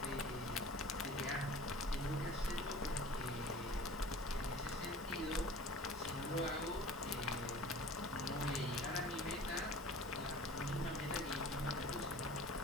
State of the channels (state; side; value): normal; both; correlation 0.43